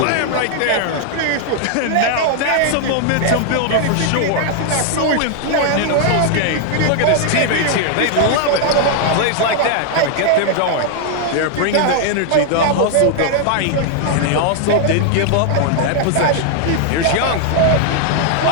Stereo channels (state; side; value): different; both; correlation 0.00